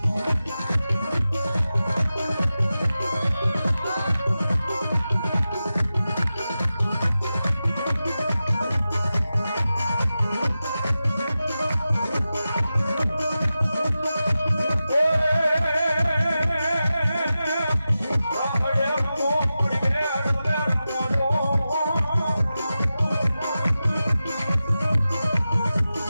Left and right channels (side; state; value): both; inverted; correlation -0.93